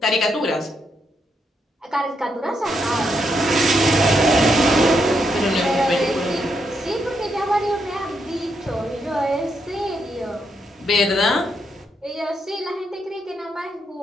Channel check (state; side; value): normal; both; correlation 0.79